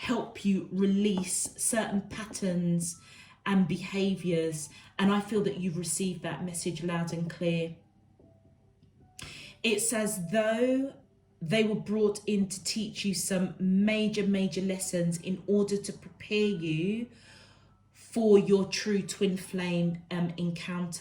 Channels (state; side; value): identical; both; correlation 1.00